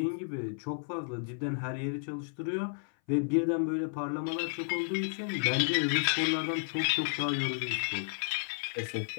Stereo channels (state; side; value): silent; right; 56 dB below the other